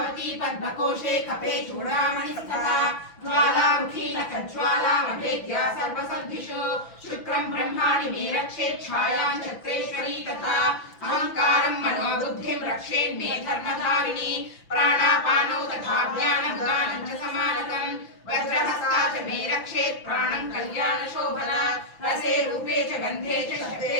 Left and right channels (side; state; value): right; late; 6.0 ms